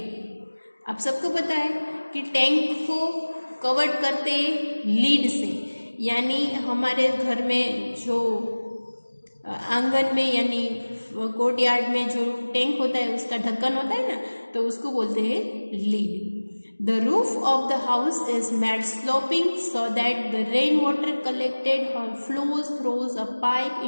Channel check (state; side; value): inverted; both; correlation -1.00